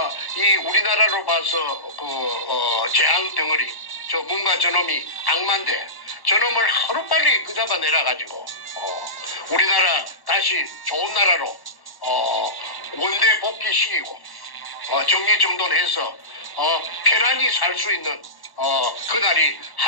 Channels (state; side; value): late; right; 1.1 ms